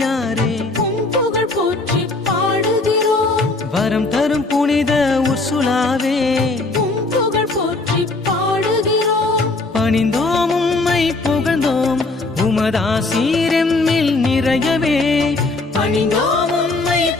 உம் புகழ் போற்றி பாடுகிறோம் வரம் தரும் புனித உர்சுலாவே உம் புகழ் போற்றி பாடுகிறோம் பணிந்தோம் உம்மை புகழ்ந்தோம் உமதாசீரெம்மில் நிறையவே பணிந்தோம் உம்மை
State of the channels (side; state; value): right; quieter; 3.2 dB